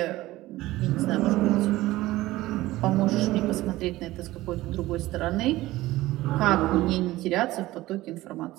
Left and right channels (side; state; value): left; quieter; 17.3 dB